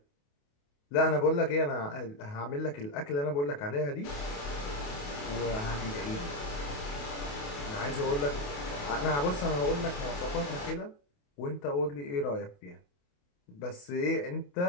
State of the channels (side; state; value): right; late; 28 ms